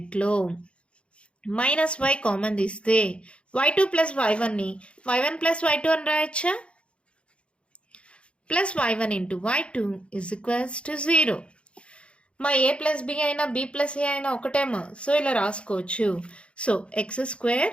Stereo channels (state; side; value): late; right; 0.059 ms